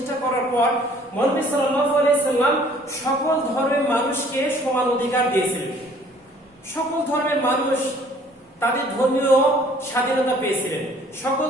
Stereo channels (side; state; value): both; normal; correlation 0.56